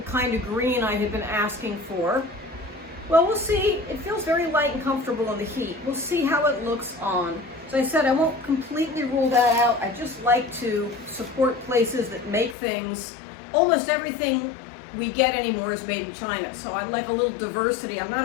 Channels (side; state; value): right; drops out; at 12.6 s